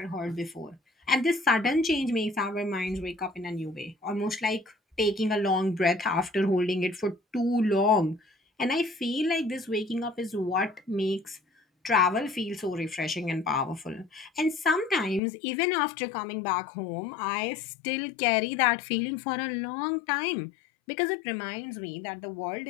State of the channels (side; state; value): right; drops out; at 15.2 s